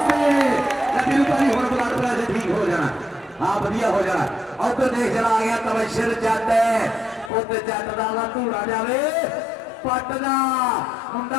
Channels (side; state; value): right; drops out; at 7.3 s